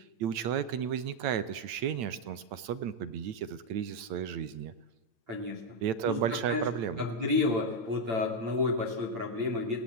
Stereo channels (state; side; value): late; left; 8.9 ms